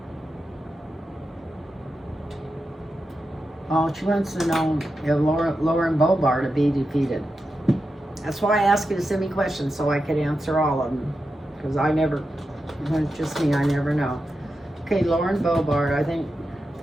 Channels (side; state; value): both; normal; correlation 0.89